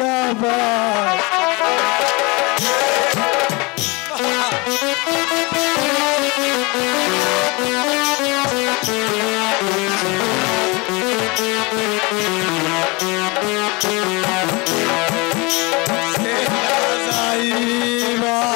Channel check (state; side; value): quieter; right; 26.8 dB